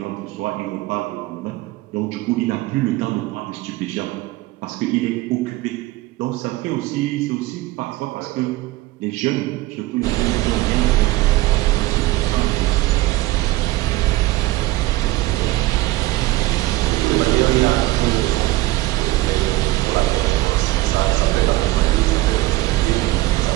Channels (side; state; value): left; quieter; 18.6 dB